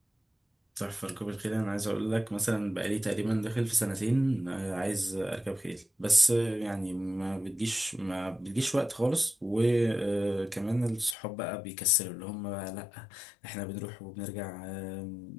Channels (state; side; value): drops out; right; at 11.2 s